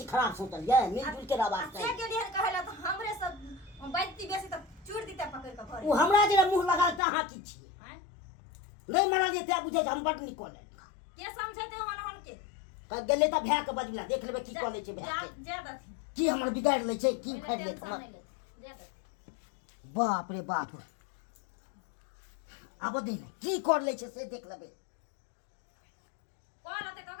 खराब सोचलिए मिलजुल के रहबाक से चाही गेलिए कहला त हमरे सब बैठती बेसी त चूड़ दीते पकड़ के घरे उ हमरा जे मुंह लगा त अहाँ की छिए हैं? नै मारलिए त बुझै हम बड निकल के समझते हन के कह गेले त भै के बजला देख लेबै की कऽ लै छै भै के ज्यादा थी की हमर बिगाड़ लै छै की उखाड़ लै हमर बाप रे बाप आब दिन की कर लै छै से देख लेबै कॉल होते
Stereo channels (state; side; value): drops out; right; at 7.0 s